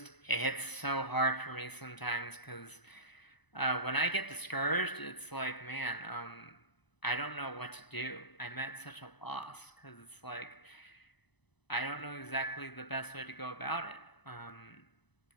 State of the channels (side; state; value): right; late; 1.0 ms